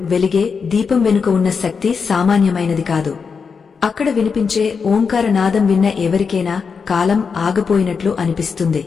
వెలిగే దీపం వెనుక ఉన్న శక్తి సామాన్యమైనది కాదు. అక్కడ వినిపించే ఓంకార నాదం విన్న ఎవరికైనా కాలం ఆగపోయినట్లు అనిపిస్తుంది.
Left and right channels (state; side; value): quieter; right; 5.6 dB